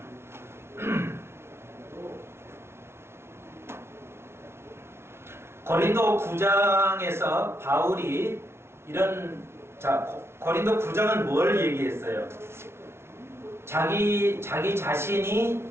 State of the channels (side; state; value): left; late; 0.12 ms